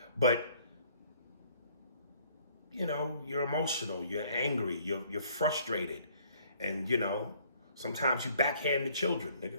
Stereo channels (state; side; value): inverted; both; correlation -0.60